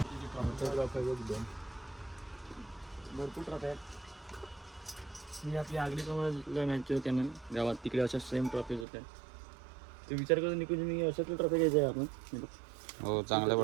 भरपूर ट्रॉफी आहेत. मी आपली आगडी कमल मॅच होत्या ना गावात, तिकडे अशा सेम ट्रॉफीज होत्या. ते विचार करून निघून मी अशातली ट्रॉफी घ्यायची आहे आपण. हो, चांगल्या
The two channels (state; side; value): drops out; left; at 8.8 s